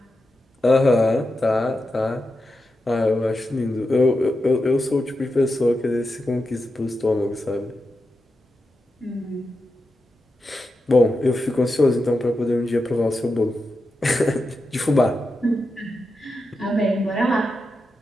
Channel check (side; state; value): both; normal; correlation 0.89